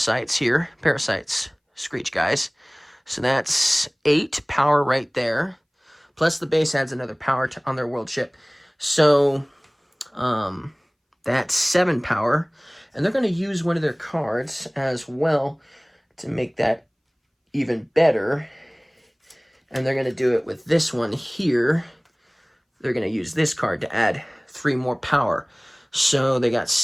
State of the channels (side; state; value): both; identical; correlation 1.00